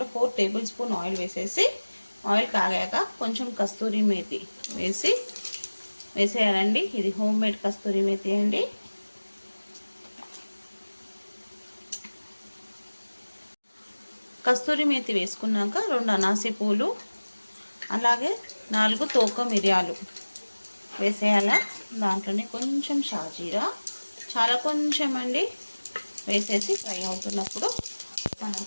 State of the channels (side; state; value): both; inverted; correlation -1.00